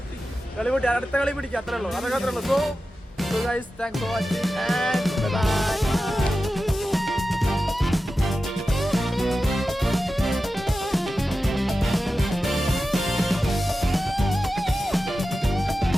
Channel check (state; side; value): normal; both; correlation 0.93